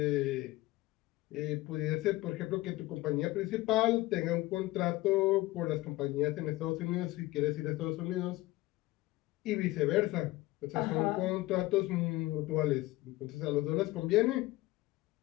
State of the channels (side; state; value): right; quieter; 18.5 dB